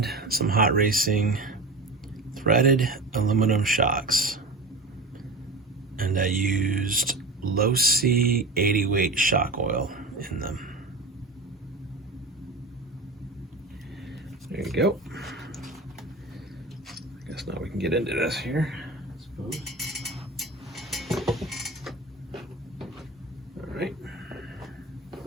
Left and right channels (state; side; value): quieter; left; 3.2 dB